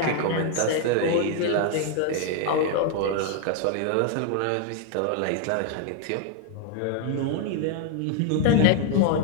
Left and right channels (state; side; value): different; both; correlation 0.00